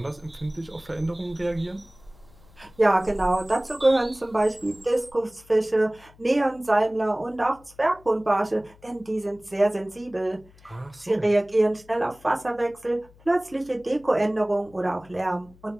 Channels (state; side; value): noise; left; hum, 26 dB below the sound